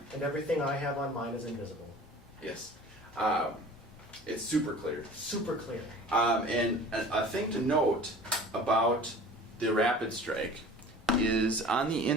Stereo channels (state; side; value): normal; both; correlation 0.43